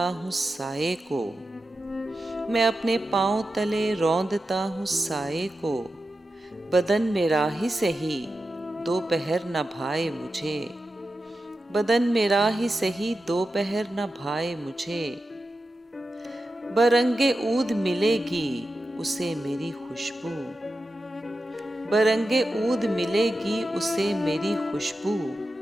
हूँ साये को, मैं अपने पाँव तले रौंदता हूँ साये को, बदन मेरा ही सही दोपहर न भाए मुझे, बदन मेरा ही सही दोपहर न भाए मुझे। बरंगे ऊद मिलेगी उसे मेरी खुशबू, बरंगे ऊद मिलेगी उसे मेरी खुशबू,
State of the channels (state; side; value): normal; both; correlation 0.91